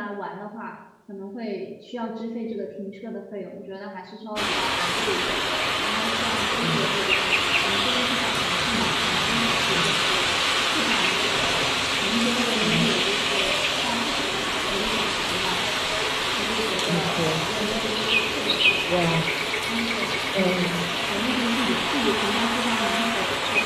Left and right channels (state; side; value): identical; both; correlation 1.00